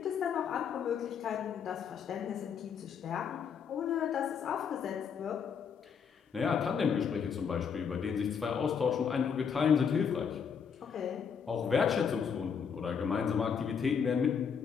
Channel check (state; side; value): quieter; right; 6.9 dB